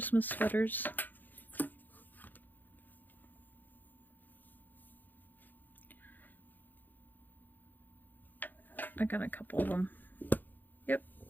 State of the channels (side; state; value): right; late; 0.087 ms